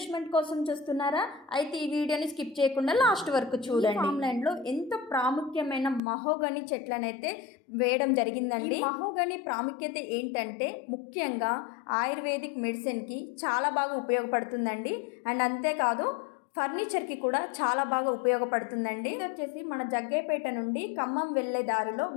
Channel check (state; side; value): drops out; right; at 6.0 s